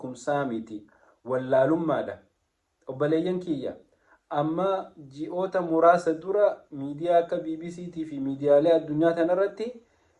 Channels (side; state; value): both; identical; correlation 1.00